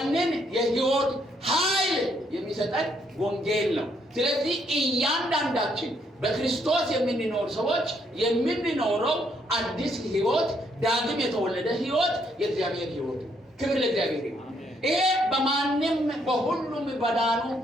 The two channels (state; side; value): normal; both; correlation 0.72